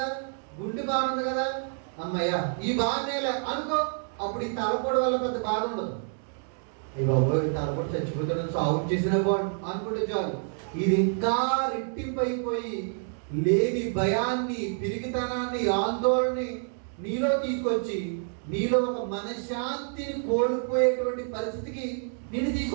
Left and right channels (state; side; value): silent; left; 59 dB below the other